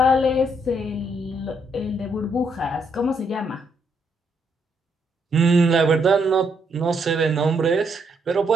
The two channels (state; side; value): normal; both; correlation 0.74